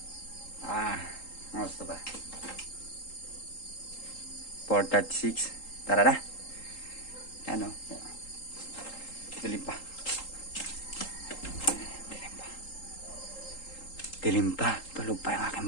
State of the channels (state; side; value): late; right; 3.8 ms